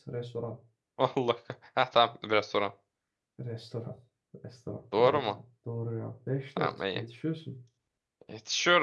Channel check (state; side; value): identical; both; correlation 1.00